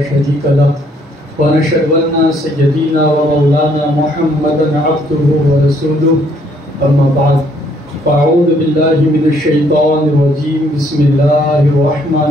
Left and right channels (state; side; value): normal; both; correlation 0.66